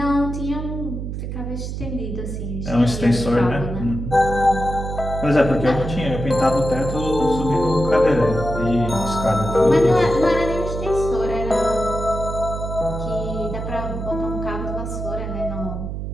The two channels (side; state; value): right; noise; hum, 5 dB below the sound